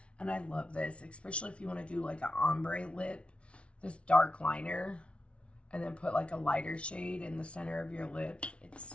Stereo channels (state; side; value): late; right; 0.060 ms